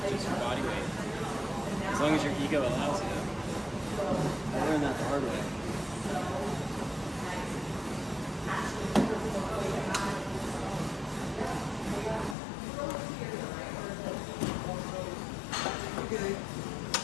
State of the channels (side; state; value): right; drops out; at 12.4 s